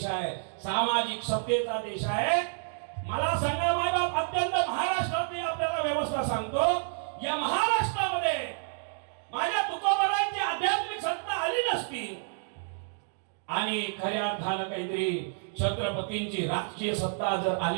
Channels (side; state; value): left; silent; digital silence